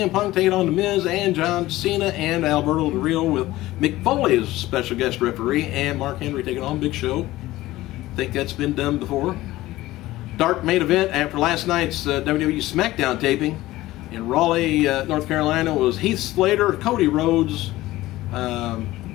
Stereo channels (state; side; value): quieter; right; 17.0 dB